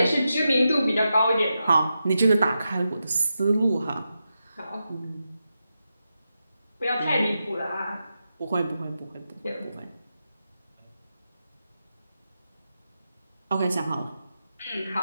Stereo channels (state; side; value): inverted; both; correlation -0.88